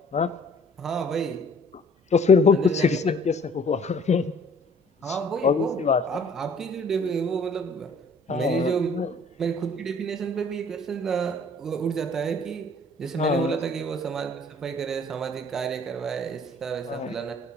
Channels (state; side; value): normal; both; correlation 0.54